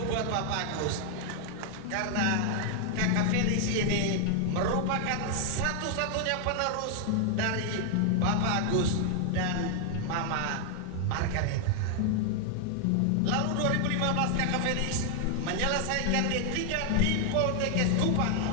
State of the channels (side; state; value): both; different; correlation 0.00